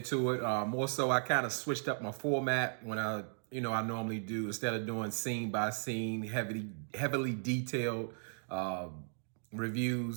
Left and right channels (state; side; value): silent; left; digital silence